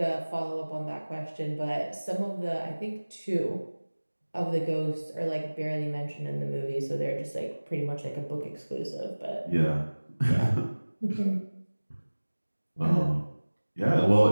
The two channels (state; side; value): inverted; both; correlation -1.00